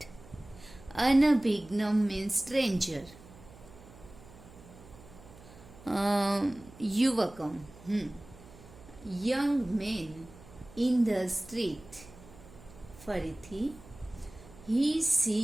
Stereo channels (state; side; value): noise; right; hum, 20 dB below the sound